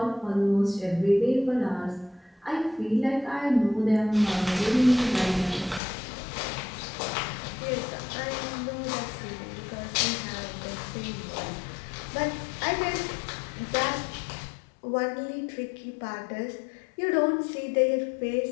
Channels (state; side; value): drops out; right; at 5.8 s